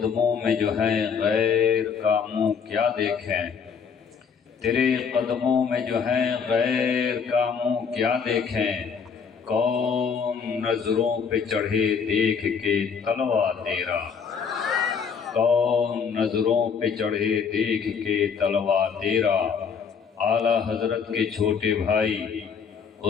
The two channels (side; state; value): right; quieter; 6.3 dB